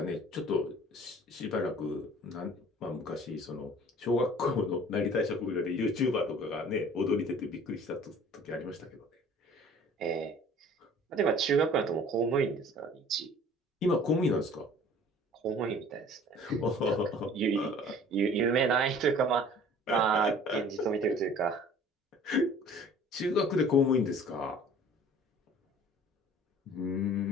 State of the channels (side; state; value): both; normal; correlation 0.49